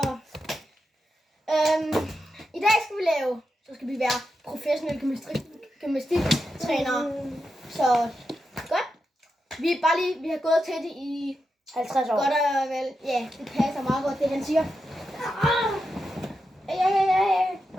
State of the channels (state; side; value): normal; both; correlation 0.87